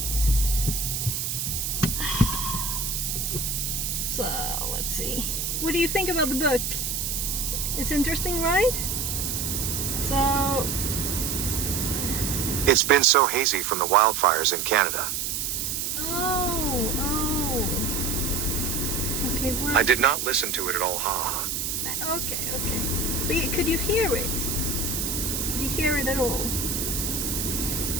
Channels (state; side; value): noise; right; hiss, 1 dB below the sound